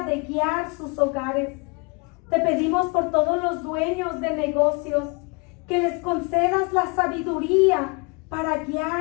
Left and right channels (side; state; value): right; quieter; 30.6 dB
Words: de guiar sus hogares. Te pedimos por todos los dueños de negocios, que les concedas la sabiduría para